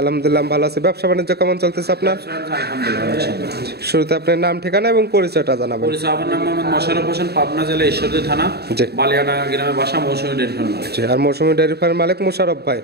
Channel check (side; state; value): left; late; 0.47 ms